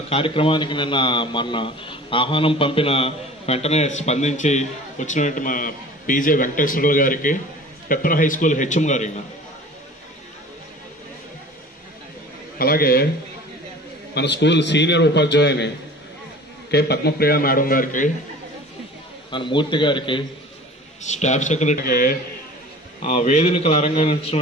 కార్యక్రమానికి మొన్న ఆహ్వానం పంపిన వెంటనే స్పందించి వచ్చినటువంటి మా పీజే వెంకటేశ్వరులు గారికి, పెప్పర్ హై స్కూల్ హెచ్ఎం గారి, అలాగే మన స్కూల్ సీనియర్ ఉపాధ్యాయుని కె పద్మప్రియ మేడం గారికి, మన మూర్తి గారికి, స్టాఫ్ సెక్రటరీకి, వేదికలు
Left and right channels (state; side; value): normal; both; correlation 0.42